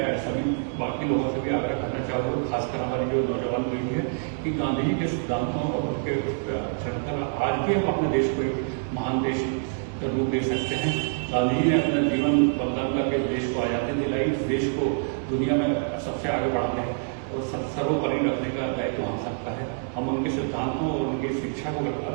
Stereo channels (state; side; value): silent; left; digital silence